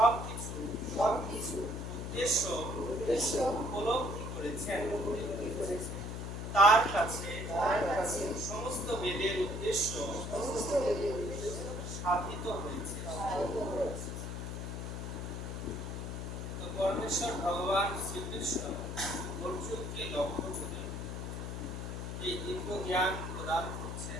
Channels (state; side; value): noise; left; hum, 5 dB below the sound